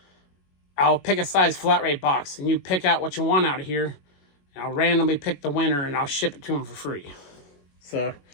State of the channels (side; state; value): right; late; 21 ms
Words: I'll pick a size flat rate box, and you pick out what you want out of here, and I'll randomly pick the winner, and I'll ship it to them for free. So